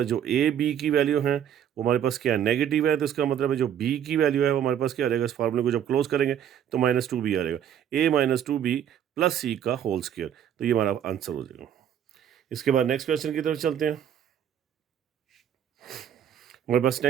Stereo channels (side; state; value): left; quieter; 9.6 dB